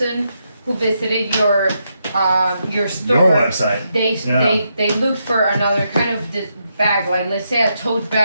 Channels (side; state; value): both; inverted; correlation -0.81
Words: who visited your store, your website, they looked for another kind of bag, like let's say a tote